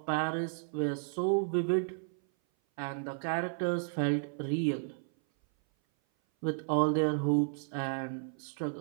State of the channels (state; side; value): silent; left; 56 dB below the other